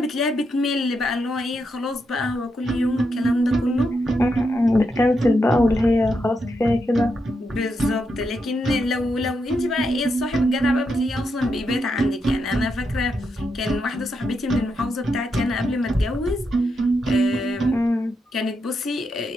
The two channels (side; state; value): both; normal; correlation 0.83